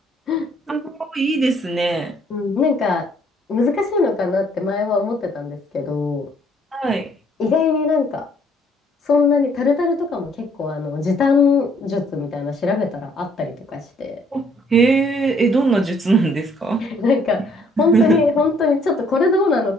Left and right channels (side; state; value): both; normal; correlation 0.64